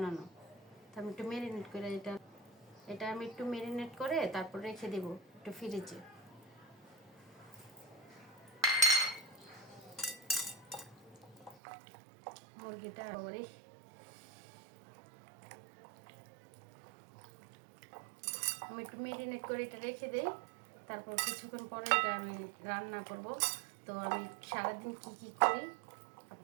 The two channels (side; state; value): left; drops out; at 11.6 s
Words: তো আমি একটু ম্যারিনেট করে এটা আমি একটু ম্যারিনেট করে তারপর রেখে দেব একটু ফ্রিজে। মুরগিটা আমি একটু ম্যারিনেট করে এটা রেখে দিই, তারপর কিছুক্ষণ পরে এটা আমি রান্না করব। তো আমি সারাদিন কি করি